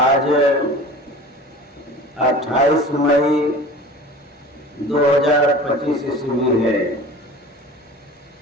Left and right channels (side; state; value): both; normal; correlation 0.40